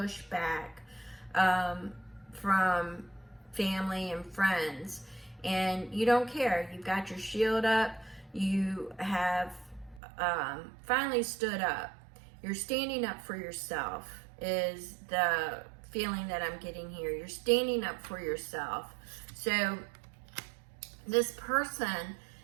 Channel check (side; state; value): left; drops out; at 10.0 s